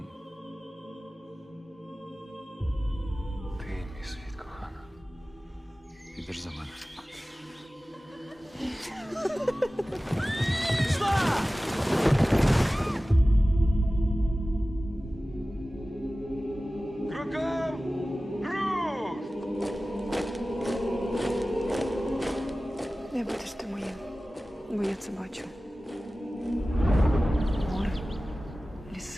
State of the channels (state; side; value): normal; both; correlation 0.97